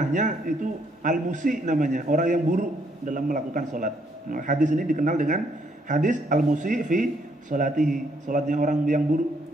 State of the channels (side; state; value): both; normal; correlation 0.71